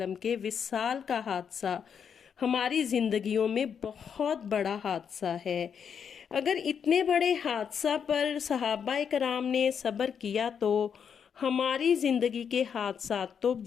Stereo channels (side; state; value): right; quieter; 7.3 dB